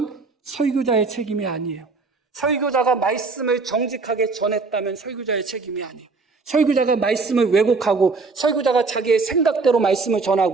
설교자의 책임이 아니에요. 설교자가 말씀을 정직하게 전했다면 설교자의 책임이 아니에요. 설교자가 말씀을 왜곡하고 설교자가 자기의 생각대로 말씀을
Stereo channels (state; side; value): quieter; left; 4.1 dB